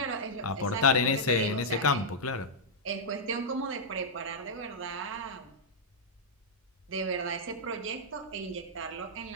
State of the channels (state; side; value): normal; both; correlation -0.08